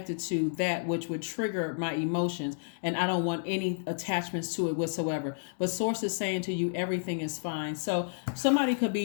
to that which would trigger my emotions. And I don't want any attachments to it whatsoever. But Source is saying to you, everything is fine. So somebody could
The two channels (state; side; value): silent; right; digital silence